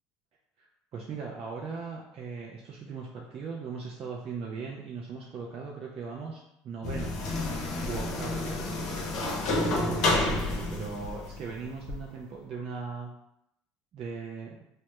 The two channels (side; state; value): both; normal; correlation 0.51